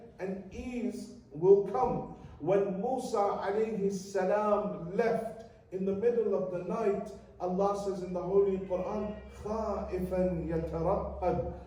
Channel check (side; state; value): both; identical; correlation 1.00